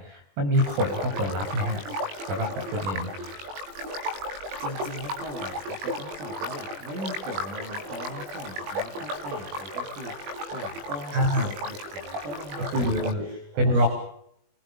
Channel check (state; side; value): late; left; 21 ms